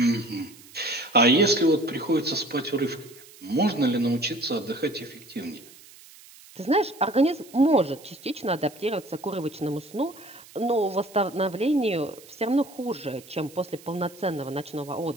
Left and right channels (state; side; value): noise; right; hiss, 22 dB below the sound